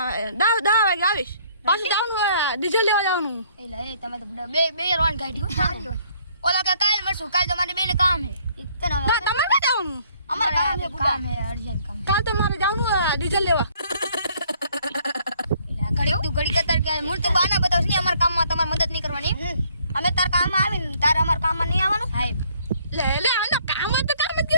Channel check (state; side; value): inverted; both; correlation -0.63